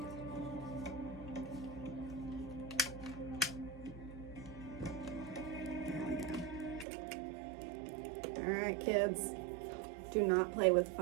There we go. All right, kids. Do not play with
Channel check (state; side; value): drops out; left; at 6.9 s